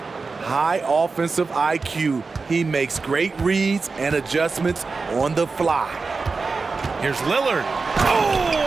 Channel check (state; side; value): quieter; left; 4.3 dB